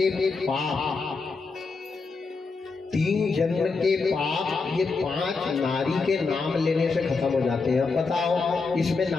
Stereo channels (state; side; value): quieter; right; 4.3 dB